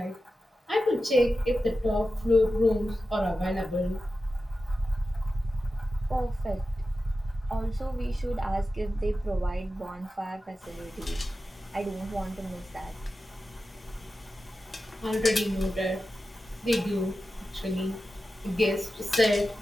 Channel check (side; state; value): both; normal; correlation 0.93